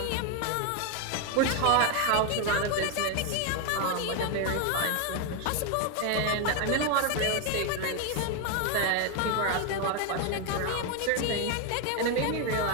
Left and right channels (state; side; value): different; both; correlation 0.01